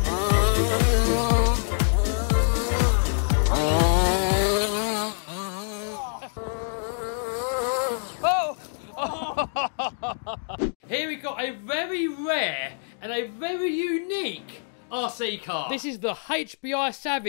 Here we got a very rare and a very unique RC car. This is the HBI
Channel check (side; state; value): right; silent; digital silence